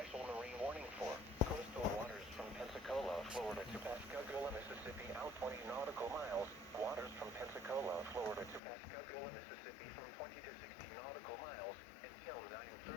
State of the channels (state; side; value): drops out; right; at 8.6 s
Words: marine warning for coastal waters from Pensacola, Florida to Pascagoula, Mississippi out 20 nautical miles, waters from Pensacola, Florida to Pascagoula, Mississippi from 20 to 60 nautical miles until